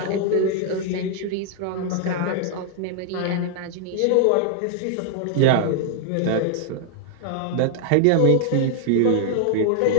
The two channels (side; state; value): both; different; correlation 0.00